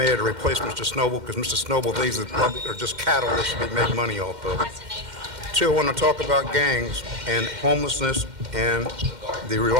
to replace Mr. Snowball because Mr. Snowball thinks that the public are just cattle that should be made money off of. 2, I want to talk about gangs and homelessness and the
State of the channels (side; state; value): left; late; 2.1 ms